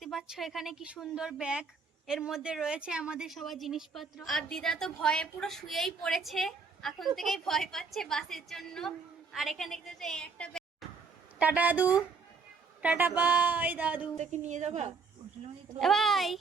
পাচ্ছ এখানে কি সুন্দর ব্যাগ, এর মধ্যে রয়েছে আমাদের সবার জিনিসপত্র। আর দিদা তো ভয়ে পুরো শুয়েই পড়েছে, এখন থেকেই ভয় পাচ্ছে বাসের জন্য। আর এখানে দেখতে পাচ্ছ এই একটা ব্যাগ। টাটা দাদু, টাটা বাই দাদু। তোকে নিয়ে যাবা? ভাই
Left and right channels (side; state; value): left; quieter; 4.8 dB